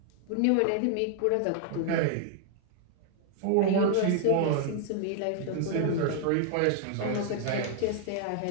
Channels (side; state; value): both; different; correlation 0.00